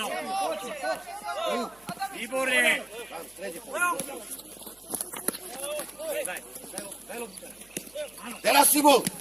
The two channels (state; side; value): noise; right; hum, 29 dB below the sound